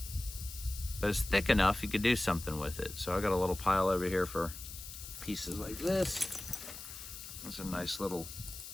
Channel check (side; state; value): left; noise; hiss, 11 dB below the sound